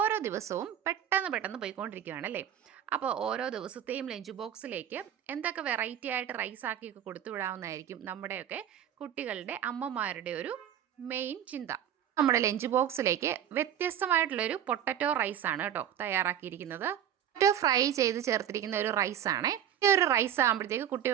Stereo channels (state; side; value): quieter; left; 10.2 dB